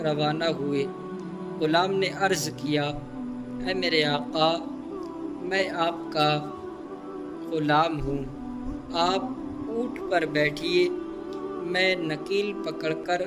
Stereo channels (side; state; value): both; identical; correlation 1.00